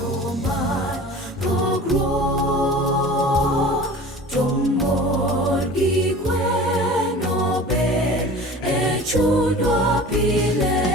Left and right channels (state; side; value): normal; both; correlation 0.40